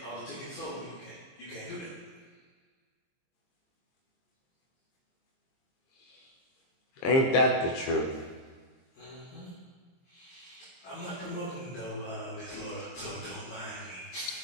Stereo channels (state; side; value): late; right; 22 ms